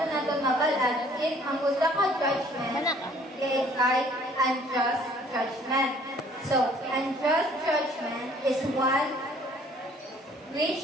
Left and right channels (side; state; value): both; normal; correlation 0.57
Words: mabalaan if ang usa ka judgment is unjust judgment. So, unjust judgment is one